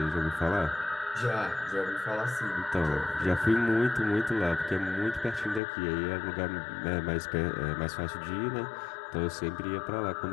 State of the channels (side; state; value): right; drops out; at 5.6 s